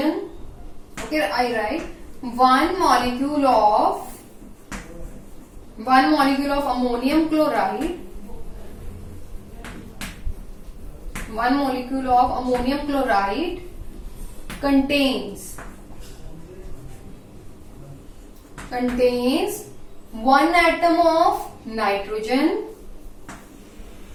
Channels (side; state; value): both; identical; correlation 1.00